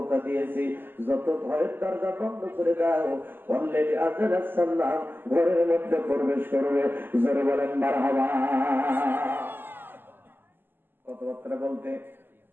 দিয়েছে, যত ঘরের দরজা বন্ধ করে দাও অলরেডি আজরাইল সাল্লাম ঘরের মধ্যে প্রবেশ করবে। জোরে বলেন মারহাবা। কথাবার্তা বলতে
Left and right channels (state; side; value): late; left; 0.095 ms